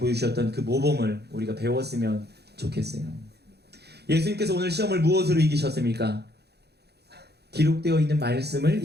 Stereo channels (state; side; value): late; left; 0.48 ms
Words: 그 모범을 우리가 배웠으면 좋겠어요. 예수님께서 오늘 시험을 무엇으로 이기셨습니까? 기록되어 있는 말씀을